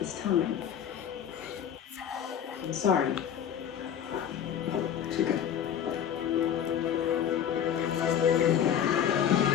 time. I'm sorry. It's okay.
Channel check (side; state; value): right; quieter; 9.3 dB